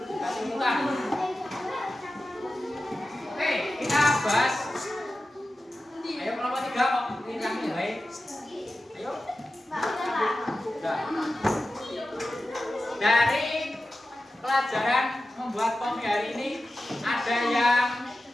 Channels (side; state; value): both; normal; correlation 0.93